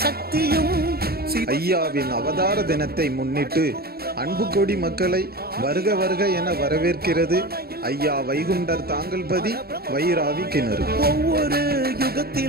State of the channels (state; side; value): late; left; 0.45 ms